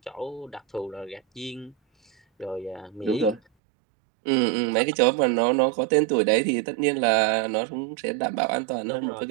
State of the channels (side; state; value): left; drops out; at 3.4 s